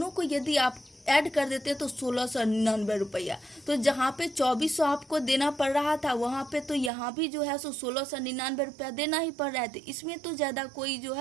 को यदि आप ऐड कर देते तो 1699 रुपया। तो जहाँ पे 2400 आपको देना पड़ रहा था वहाँ पे तो यहाँ भी जो है सो 1699 रुपया देना ही पड़ रहा है। तो इसमें तो ज़्यादा कोई जो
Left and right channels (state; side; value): drops out; left; at 6.9 s